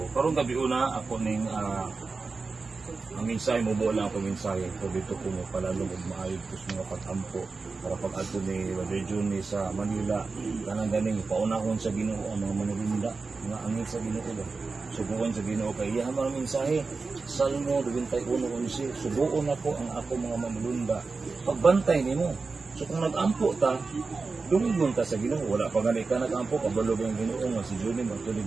karong gabi una ako ning ang mensahe mo lang ako mensahe ko dito ko mo palalong og maayo kus mga pag-ampo para pag-adto ni Brother Johnny sa Manila kanang ganing paunahon sa Ginoo ang mga manulinda nga angin sa Ginoo ba subuon sa Ginoo kay iya man mensahe Salmo 21:11 subuon ako ang ako mga manulunda pagbantay nimo so kung nag-ampo ta dumigon ka sa Ginoo wala pa gani ka nag-ampo kabalo ang Ginoo nga si Johnny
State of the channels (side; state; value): left; quieter; 4.2 dB